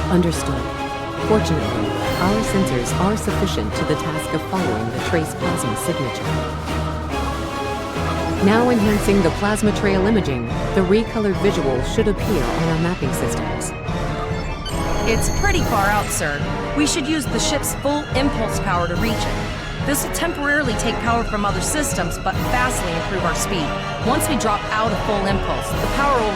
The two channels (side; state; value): both; identical; correlation 1.00